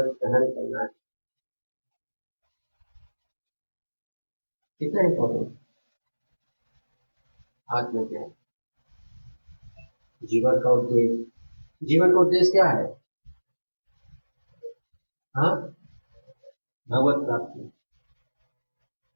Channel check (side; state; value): both; inverted; correlation -1.00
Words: सहन करना है। कितना इंपॉर्टेंट आत्मज्ञान, जीवन का उद्देश्य। जीवन का उद्देश्य क्या है? हाँ, भगवत प्राप्ति।